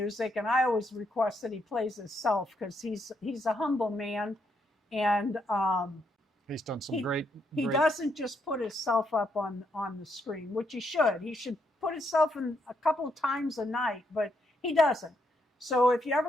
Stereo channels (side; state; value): both; normal; correlation 0.77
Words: And I always request that he plays himself because he's a humble man, and he's done some great. He doesn't just put himself up on the screen, which he should. He should put himself in a couple of times a night, but he doesn't. So if you